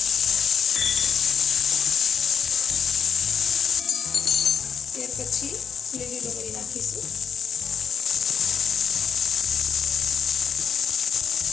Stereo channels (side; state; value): right; quieter; 7.0 dB